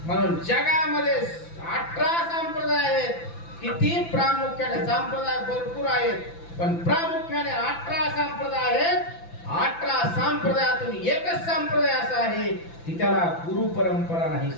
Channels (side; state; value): right; late; 5.9 ms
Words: म्हणून जगामध्ये 18 संप्रदाय आहेत. किती प्रामुख्याने संप्रदाय भरपूर आहेत, पण प्रामुख्याने 18 संप्रदाय आहेत. 18 संप्रदायातून एकच संप्रदाय असा आहे की त्याला गुरु परंपरा नाही.